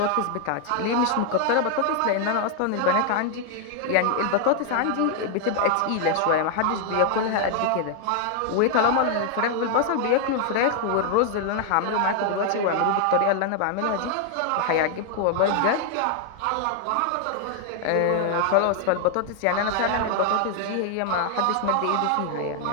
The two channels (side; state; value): both; different; correlation 0.00